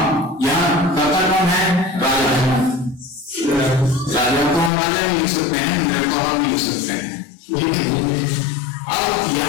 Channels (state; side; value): drops out; right; at 4.7 s